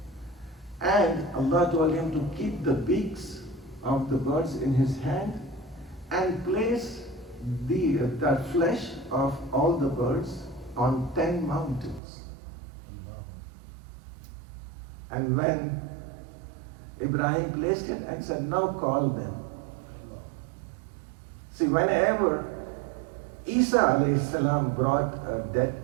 And Allah told him to keep the beaks of the birds in his hand and place the flesh of all the birds on 10 mountains. And when Ibrahim placed it and said, now call them. See, whenever Isa alayhi salam brought a dead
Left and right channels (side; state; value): left; drops out; at 12.0 s